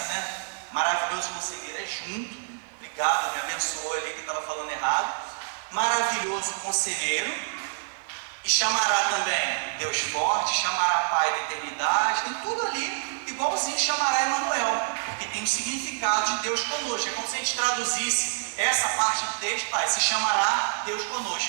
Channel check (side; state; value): left; silent; 59 dB below the other